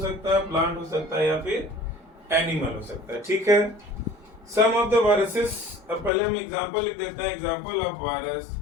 है, प्लांट हो सकता है या फिर एनिमल हो सकता है। ठीक है, सम ऑफ द वायरसेस। अब पहले हम एग्जांपल लिख देते हैं। एग्जांपल ऑफ वायरस,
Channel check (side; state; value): right; drops out; at 6.1 s